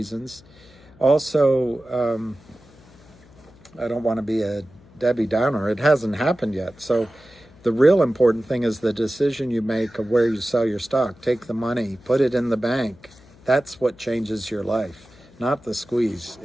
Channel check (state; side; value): noise; left; hum, 25 dB below the sound